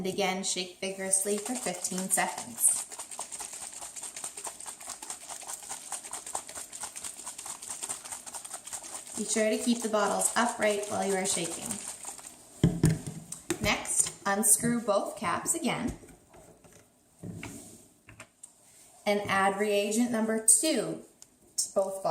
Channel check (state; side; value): identical; both; correlation 1.00